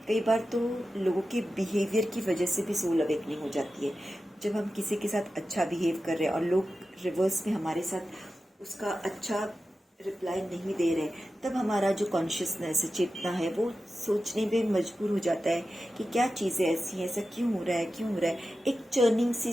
कई बार तो लोगों के बिहेवियर की वजह से भी सोल अवेकनिंग हो जाती है। जब हम किसी के साथ अच्छा बिहेव कर रहे हैं और लोग रिवर्स में हमारे साथ उसका अच्छा रिप्लाई नहीं दे रहे, तब हमारा जो कॉन्शियसनेस चेतना है वो सोचने में मजबूर हो जाता है कि क्या चीज़ें ऐसी हैं, ऐसा क्यों हो रहा है, क्यों हो रहा है। एक चर्निंग सी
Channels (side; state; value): both; normal; correlation 0.93